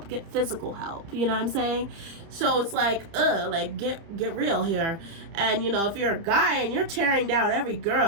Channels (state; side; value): late; left; 30 ms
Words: Get physical help. You know what I'm saying? So it's like, like, get real here. And, you know, if you're a guy and you're tearing down every